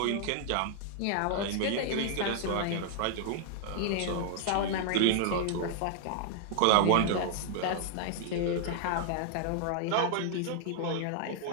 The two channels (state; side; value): different; both; correlation -0.01